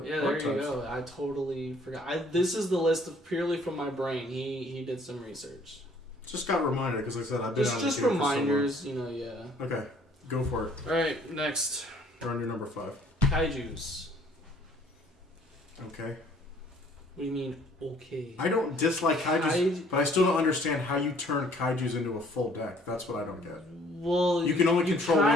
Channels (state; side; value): normal; both; correlation 0.58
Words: yeah, there you go. I totally forgot. This is the list of purely from my brain. He did some research. Just got reminded, because like I said, I've been just reminders, you know, yeah. Okay, go for it. Alright, next. We're on your number 5. Kaijus. Okay. What do you mean, okay? I don't dislike kaijus, but I still don't understand how you turn kaijus into a full deck. That's what I don't get. Well, you can only control